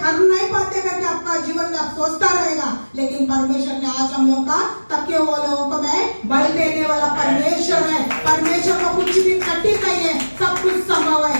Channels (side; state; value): both; inverted; correlation -1.00